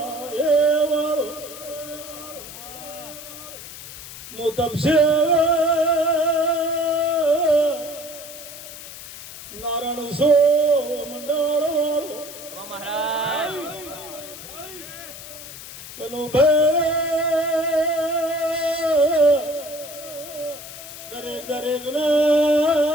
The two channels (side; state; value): left; noise; hiss, 13 dB below the sound